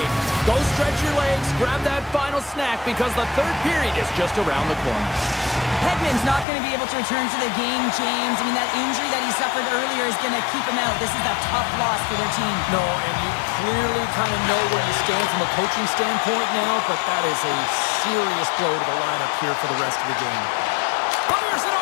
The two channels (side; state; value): right; drops out; at 6.5 s